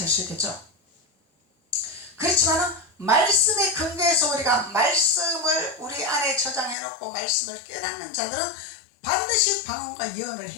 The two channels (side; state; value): right; drops out; at 6.8 s